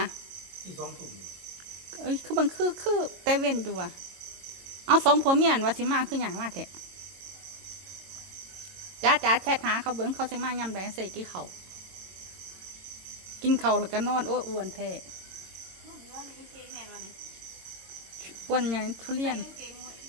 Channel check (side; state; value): left; late; 22 ms